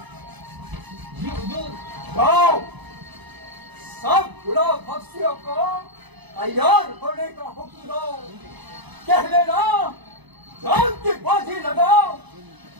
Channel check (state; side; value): late; left; 1.0 ms